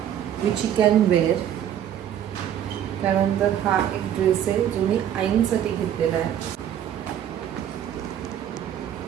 विच यू कॅन वेअर. त्यानंतर हा एक ड्रेस आहे जो मी आईंसाठी घेतलेला आहे.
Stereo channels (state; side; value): quieter; left; 10.2 dB